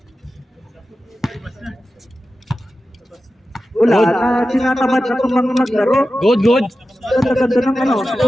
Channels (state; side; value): normal; both; correlation 0.93